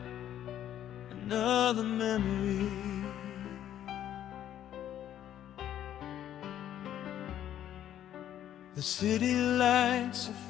another memory. The city lights are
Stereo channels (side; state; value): right; quieter; 11.1 dB